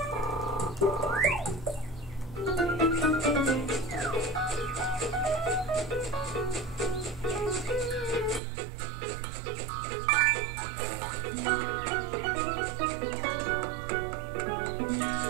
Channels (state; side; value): drops out; left; at 8.4 s